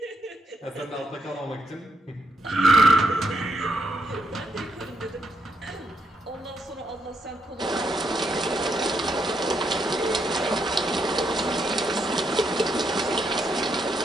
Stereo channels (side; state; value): both; normal; correlation 0.78